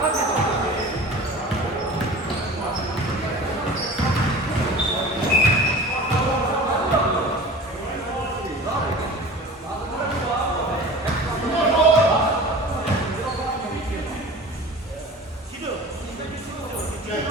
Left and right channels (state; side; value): normal; both; correlation 0.38